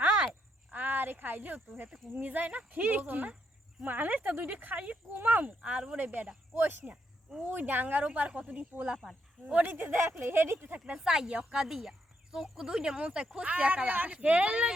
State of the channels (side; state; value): both; normal; correlation 0.77